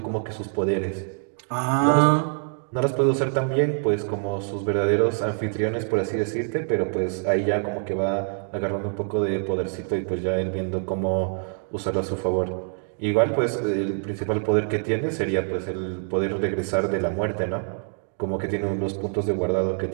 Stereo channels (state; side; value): silent; left; 56 dB below the other